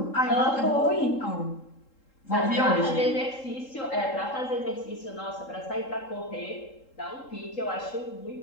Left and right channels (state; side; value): late; right; 3.7 ms